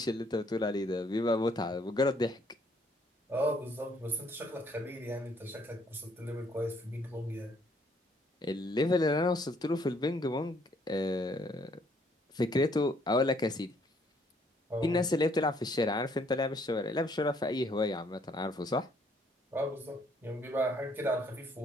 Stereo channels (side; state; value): both; normal; correlation 0.66